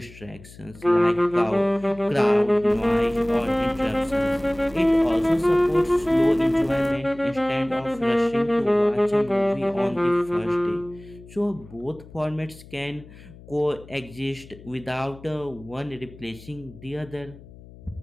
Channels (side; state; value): left; noise; hum, 20 dB below the sound